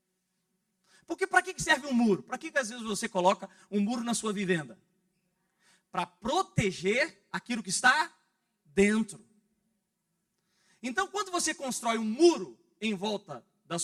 Porque para que serve um muro? Para que às vezes você coloca um muro na sua vivenda? Para proteger aquilo que está dentro. Então, quando você constrói um muro em volta da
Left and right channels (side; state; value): both; identical; correlation 1.00